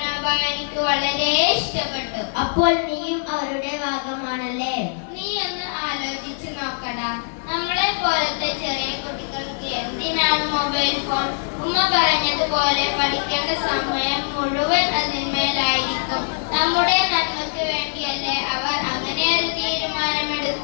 എനിക്ക് വളരെ ഇഷ്ടപ്പെട്ടു. അപ്പോൾ നീയും അവരുടെ ഭാഗമാണല്ലേ? നീ ഒന്ന് ആലോചിച്ച് നോക്കടാ. നമ്മളെ പോലത്തെ ചെറിയ കുട്ടികൾക്ക് എന്തിനാണ് മൊബൈൽ ഫോൺ? ഉമ്മ പറഞ്ഞതുപോലെ പഠിക്കേണ്ട സമയം മുഴുവൻ അതിന്മേലായിരിക്കും. നമ്മുടെ നന്മക്ക് വേണ്ടിയല്ലേ അവർ അങ്ങനെ ഒരു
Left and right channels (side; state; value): right; silent; digital silence